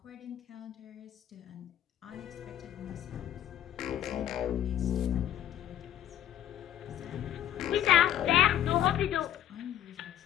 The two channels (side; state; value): right; quieter; 11.7 dB